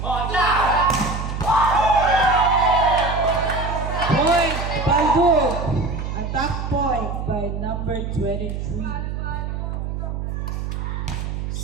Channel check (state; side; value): noise; right; hum, 4 dB below the sound